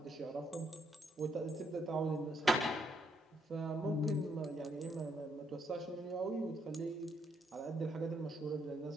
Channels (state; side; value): normal; both; correlation 0.74